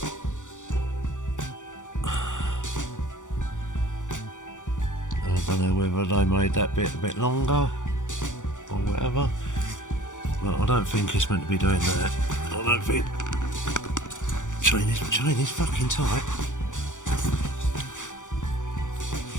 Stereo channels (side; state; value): right; late; 0.86 ms